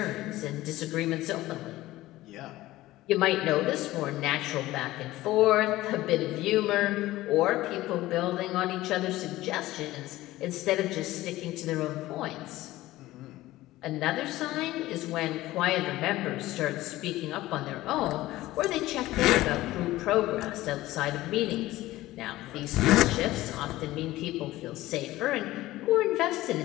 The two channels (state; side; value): quieter; right; 16.8 dB